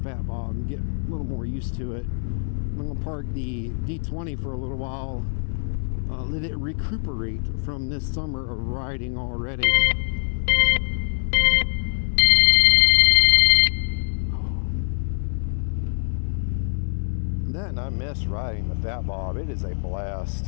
Fat Bob and get a little more used to it. I'm going to park the D20 for a little while, let it recuperate from this summer of riding already. That, and I miss riding the Fat Bob. It is a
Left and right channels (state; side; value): silent; right; digital silence